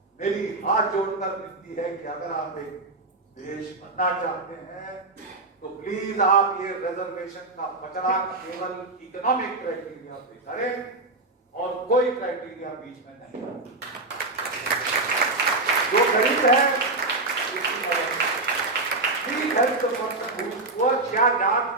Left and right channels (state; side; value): quieter; left; 3.2 dB